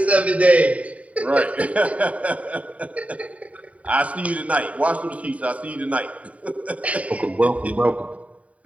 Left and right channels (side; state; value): left; late; 0.067 ms